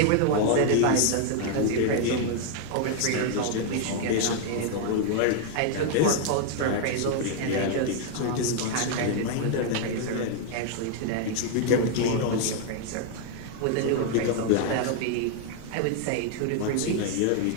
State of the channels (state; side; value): different; both; correlation 0.00